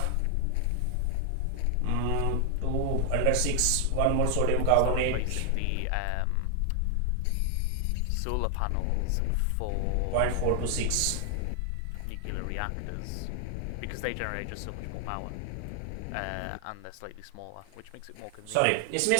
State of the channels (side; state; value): both; different; correlation 0.00